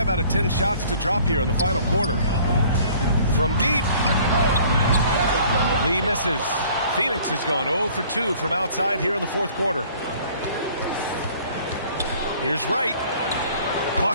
out of 10 shots to drop here in the final quarter. From deep. Lee misses. Phoenix has gone 0 for 2 from outside here in the fourth quarter. Here's Wright.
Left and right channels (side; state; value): both; inverted; correlation -0.54